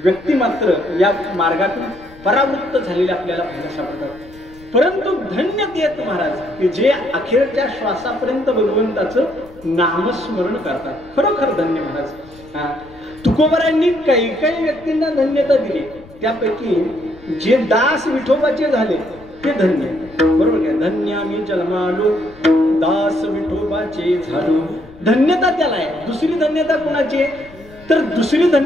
व्यक्ती मात्र या मार्गातून परावृत्त झालेले आपल्याला पाहायला सापडतात. परंतु धन्य देत महाराज की जे अखेरच्या श्वासापर्यंत भगवंताचं नामस्मरण करतात. खरोखर धन्य महाराज. तुकोबरांनी काही काही व्यक्तींना धन्यता दिली. त्यापैकी जे दास विठोबाचे झाले ते धन्य. बरोबर काय? धन्य आम्ही जन्मालो दास विठोबाचे झालो. धन्यता त्याला आहे. दुसरी धन्यता कोणाची? तर दुसरी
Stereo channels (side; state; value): left; noise; rumble, 23 dB below the sound